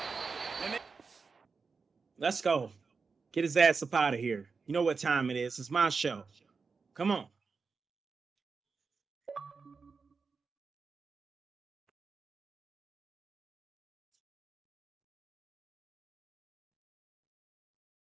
And let's go. Get his ass up out of here. You know what time it is. It's my show. Come on.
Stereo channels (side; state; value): left; quieter; 4.8 dB